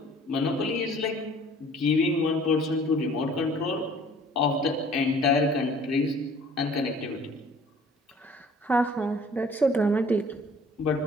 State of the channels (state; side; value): normal; both; correlation 0.52